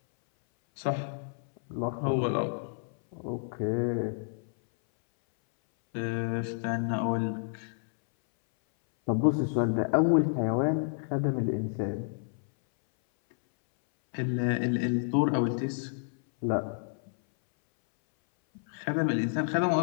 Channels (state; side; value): silent; right; 58 dB below the other